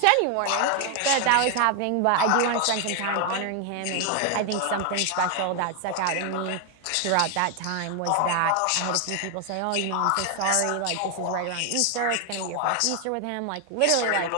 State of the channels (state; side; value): different; both; correlation 0.00